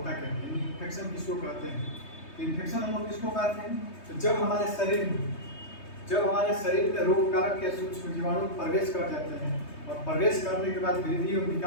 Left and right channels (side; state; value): right; late; 3.2 ms